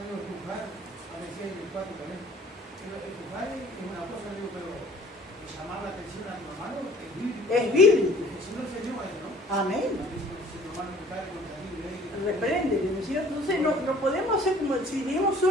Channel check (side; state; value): both; normal; correlation 0.52